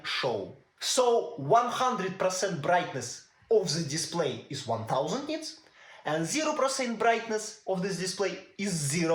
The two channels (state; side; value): identical; both; correlation 1.00